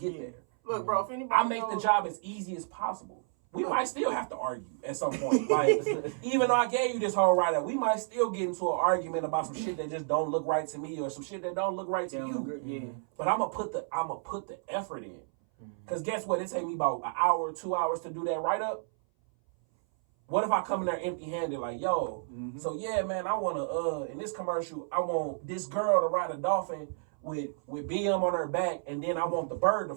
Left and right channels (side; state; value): left; silent; 57 dB below the other